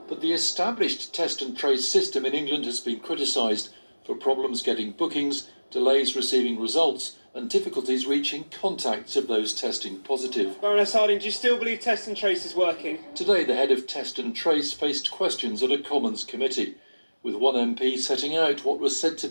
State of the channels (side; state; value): both; inverted; correlation -1.00